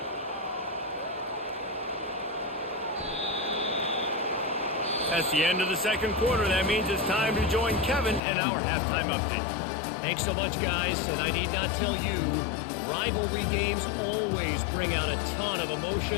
That's the end of the second quarter. That means it's time to join Kevin and our halftime update. Thanks so much, guys. And I need not tell you, rivalry games always bring out a ton of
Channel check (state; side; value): drops out; right; at 8.2 s